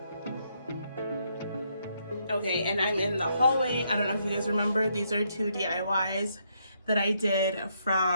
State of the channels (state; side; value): inverted; both; correlation -0.75